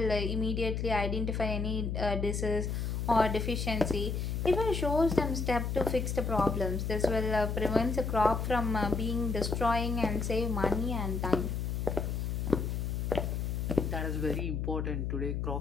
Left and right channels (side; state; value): left; noise; hum, 1 dB below the sound